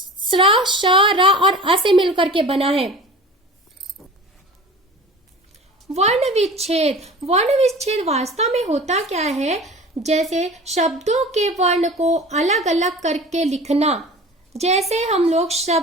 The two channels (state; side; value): normal; both; correlation 0.38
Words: श्र, श, र और अ से मिलकर के बना है। वर्ण विच्छेद, वर्ण विच्छेद वास्तव में होता क्या है, जैसे शब्दों के वर्ण को अलग अलग करके लिखना। जैसे हम लोग